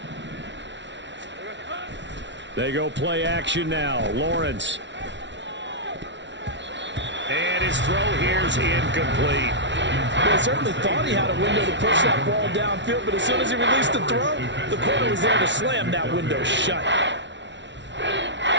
They go play action now. Lawrence. And his throw here's incomplete. Well, he certainly thought he had a window to push that ball downfield, but as soon as he released the throw, the corner was there to slam that window shut.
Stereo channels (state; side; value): late; left; 0.52 ms